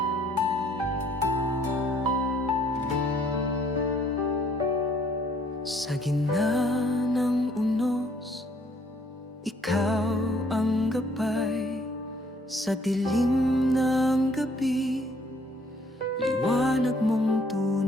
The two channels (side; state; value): both; normal; correlation 0.63